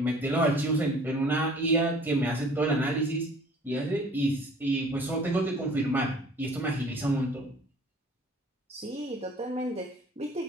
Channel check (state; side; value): normal; both; correlation 0.51